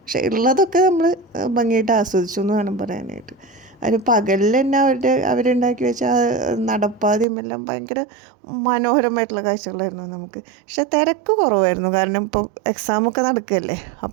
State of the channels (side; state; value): left; drops out; at 7.2 s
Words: പക്ഷെ ഉള്ളതൊക്കെ നമ്മൾ ഭംഗിയായിട്ട് ആസ്വദിച്ചു എന്ന് വേണം പറയാനായിട്ട്. അതിന് പകലിൽ തന്നെ അവരുണ്ടാക്കി വെച്ച നടപ്പാതയും എല്ലാം ഭയങ്കര മനോഹരമായിട്ടുള്ള കാഴ്ചകളായിരുന്നു നമുക്ക്. പക്ഷെ തിരക്ക് കുറവായിരുന്നു, കാരണം ഇപ്പോൾ എക്സാമൊക്കെ നടക്കുകയല്ലേ.